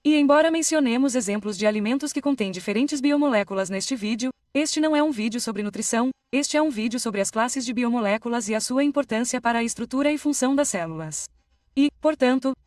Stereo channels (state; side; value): identical; both; correlation 1.00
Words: E embora mencionemos exemplos de alimentos que contêm diferentes biomoléculas neste vídeo, este não é um vídeo sobre nutrição, este é um vídeo sobre as classes de biomoléculas e a sua importância para a estrutura e função das células. E, portanto,